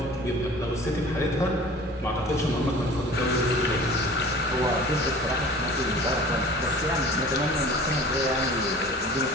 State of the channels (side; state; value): both; normal; correlation 0.43